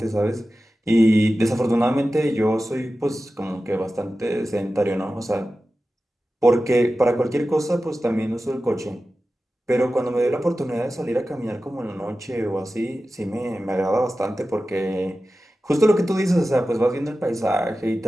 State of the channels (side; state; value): both; normal; correlation 0.94